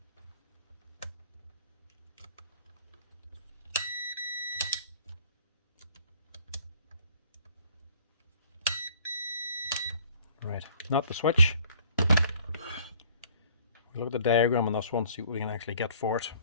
Right, not the switch. We look at the diagram on this one, see what we can actually get for it.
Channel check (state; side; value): inverted; both; correlation -0.56